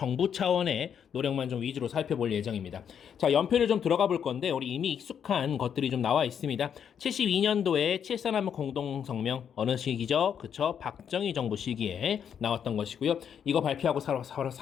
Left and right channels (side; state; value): right; quieter; 8.1 dB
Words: 차원의 노력만 좀 위주로 살펴볼 예정입니다. 자, 연표를 좀 들어가 볼 건데, 우리 이미 익숙한 것들이 좀 나와 있습니다. 72년도에 7.4남북 공동성명, 어느 시기죠? 그쵸? 박정희 정부 시기에 나왔던 것이고요. 이거 발표하고 바로